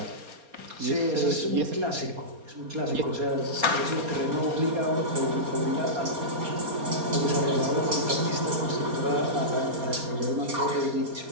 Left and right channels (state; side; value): late; left; 4.3 ms